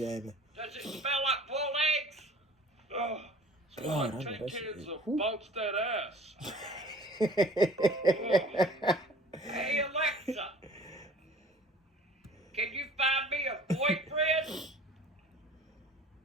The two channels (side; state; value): both; normal; correlation 0.47